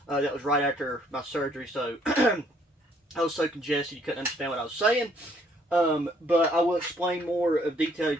That was right after my surgery, so I was so congested you couldn't understand what I was saying. But I will explain more of detail. It's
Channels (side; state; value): both; normal; correlation 0.65